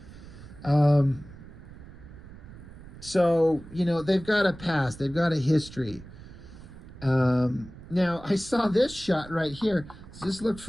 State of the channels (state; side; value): noise; right; rumble, 17 dB below the sound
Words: So, you know, they've got a past, they've got a history. Now, I saw this shot right here. Does this look